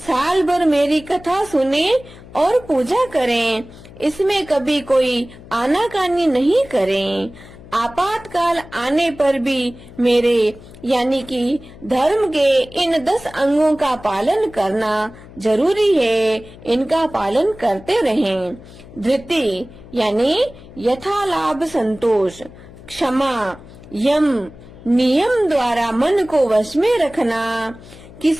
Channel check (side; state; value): left; noise; hum, 19 dB below the sound